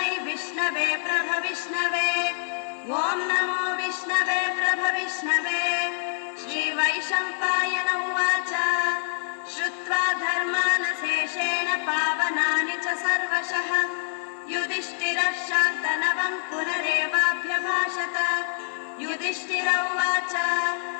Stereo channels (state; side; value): silent; right; 61 dB below the other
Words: विष्णवे प्रभविष्णवे। ॐ नमो विष्णवे प्रभविष्णवे। श्रीवैशम्पायन उवाच श्रुत्वा धर्मानशेषेण पावनानि च सर्वशः युधिष्ठिरः शान्तनवं पुनरेवाभ्यभाषत। युधिष्ठिर उवाच